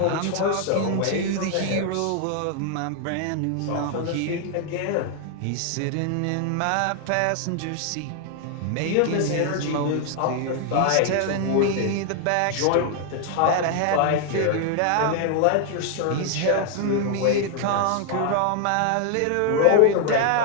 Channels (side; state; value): both; different; correlation 0.00